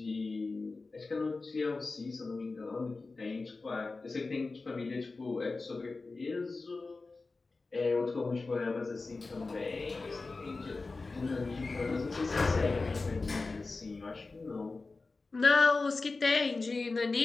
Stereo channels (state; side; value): quieter; right; 3.7 dB